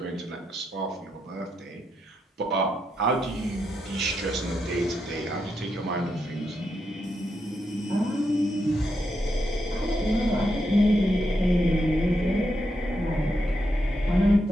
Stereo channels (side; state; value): both; normal; correlation 0.83